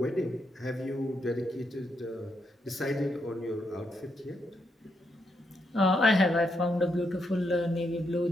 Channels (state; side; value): normal; both; correlation 0.80